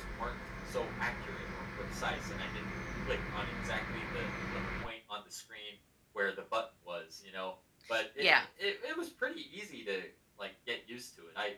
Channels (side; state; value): both; identical; correlation 1.00